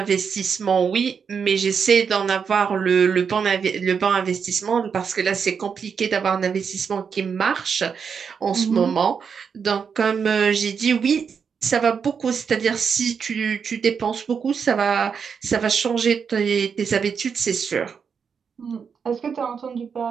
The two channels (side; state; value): left; quieter; 6.4 dB